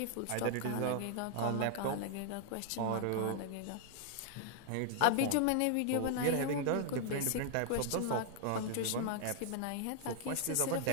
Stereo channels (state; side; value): different; both; correlation 0.00